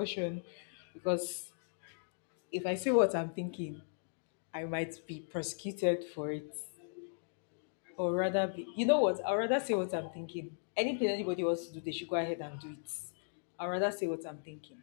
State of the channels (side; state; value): right; silent; digital silence